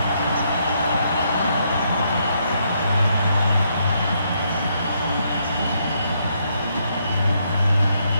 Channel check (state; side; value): inverted; both; correlation -0.75